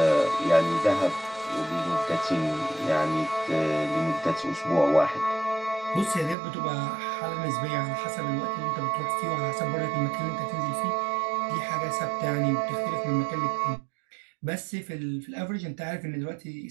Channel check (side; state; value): left; drops out; at 6.4 s